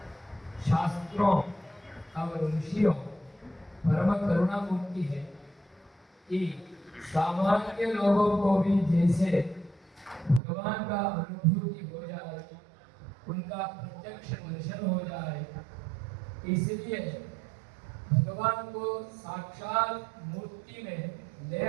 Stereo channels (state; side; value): drops out; left; at 10.4 s